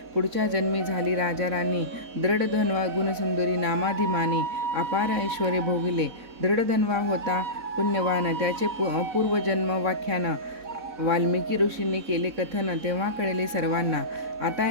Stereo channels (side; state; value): left; late; 4.1 ms